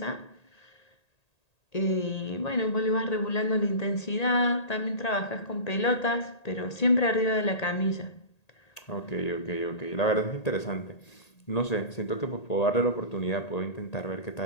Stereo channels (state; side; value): late; right; 1.8 ms